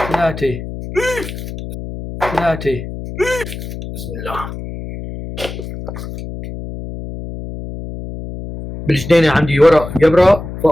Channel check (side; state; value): left; noise; hum, 9 dB below the sound